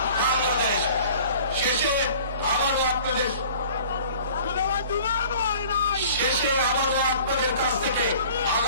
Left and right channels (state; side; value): inverted; both; correlation -0.48